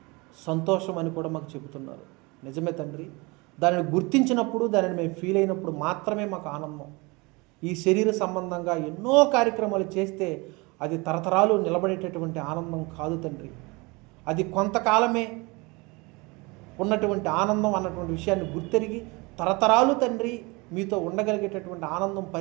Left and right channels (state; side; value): quieter; left; 26.2 dB